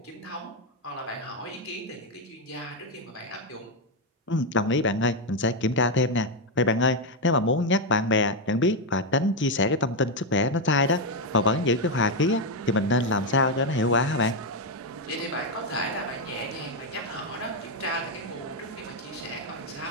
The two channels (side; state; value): both; normal; correlation 0.03